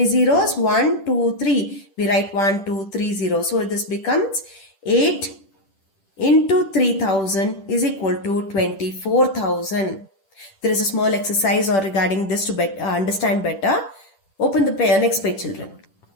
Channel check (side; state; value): right; late; 10 ms